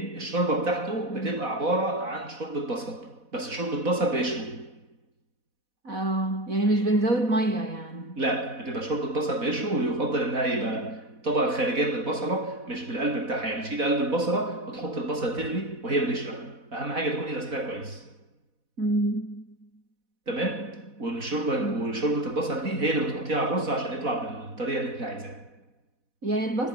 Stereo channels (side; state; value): left; late; 4.1 ms